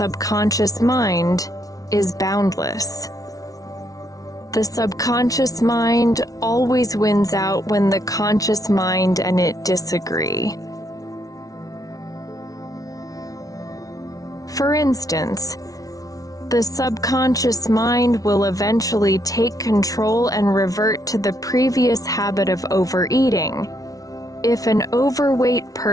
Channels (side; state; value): right; late; 0.18 ms